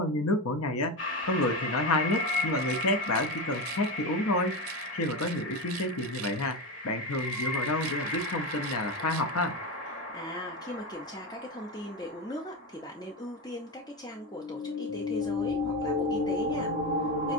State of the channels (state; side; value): normal; both; correlation 0.17